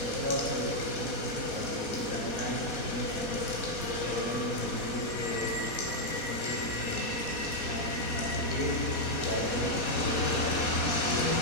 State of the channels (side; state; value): right; late; 4.2 ms